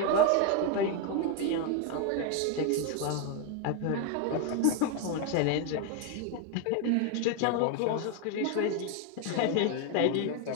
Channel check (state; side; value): different; both; correlation 0.01